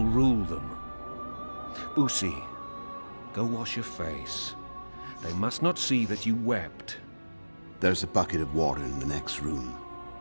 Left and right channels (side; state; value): both; inverted; correlation -1.00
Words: rule them. Boosie, go wash your face. They must not see that you wept. There's a bucket of water in the next room.